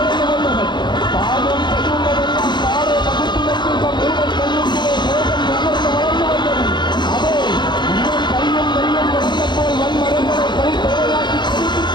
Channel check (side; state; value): right; late; 0.22 ms